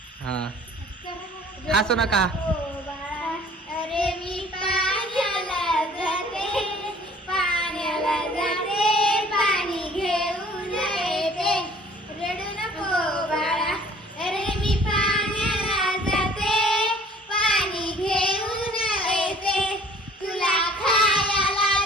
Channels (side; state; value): both; normal; correlation 0.52